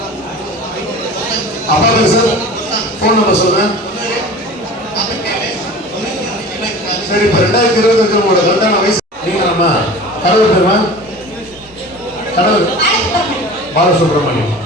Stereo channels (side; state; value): both; normal; correlation 0.38